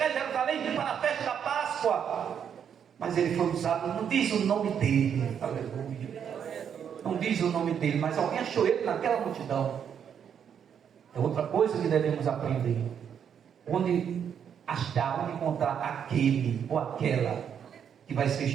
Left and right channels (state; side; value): quieter; left; 8.1 dB